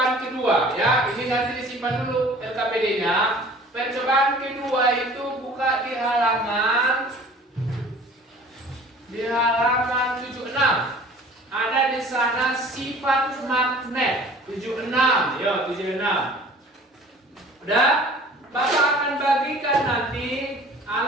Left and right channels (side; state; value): both; normal; correlation 0.47